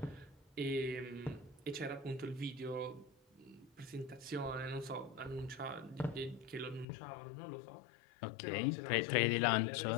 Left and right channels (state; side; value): drops out; right; at 6.9 s